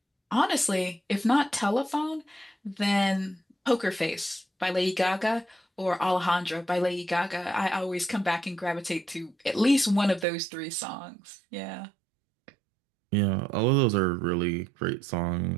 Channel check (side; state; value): left; drops out; at 10.2 s